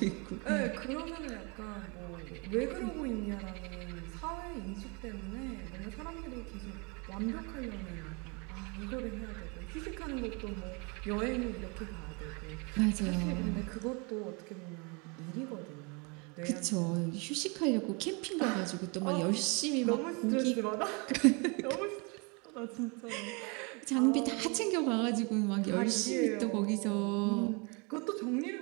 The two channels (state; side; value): quieter; left; 31.4 dB